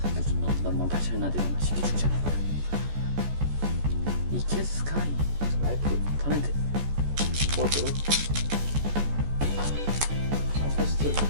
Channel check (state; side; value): late; left; 14 ms